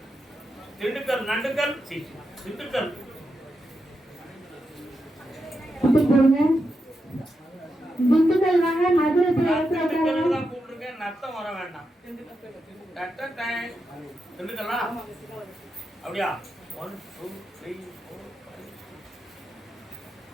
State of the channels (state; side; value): normal; both; correlation 0.86